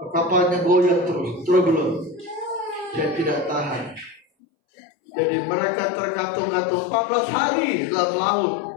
Kapalnya goyang terus belum. Saya tidak tahan. Jadi mereka terkatung-katung 14 hari dalam laut.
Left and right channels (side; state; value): right; drops out; at 4.2 s